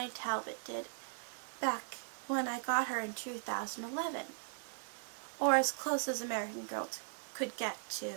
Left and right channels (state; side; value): silent; left; digital silence